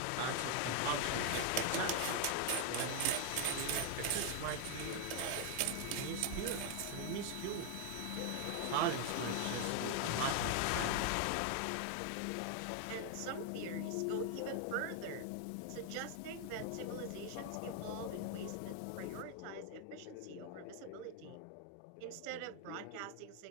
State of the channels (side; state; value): both; different; correlation 0.01